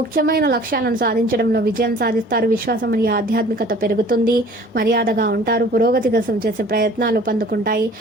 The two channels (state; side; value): normal; both; correlation 0.49